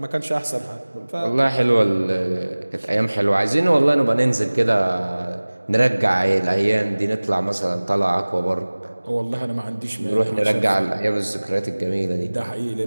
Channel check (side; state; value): both; inverted; correlation -1.00